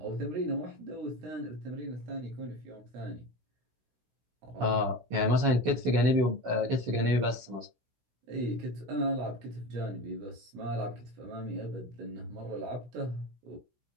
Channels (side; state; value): left; late; 16 ms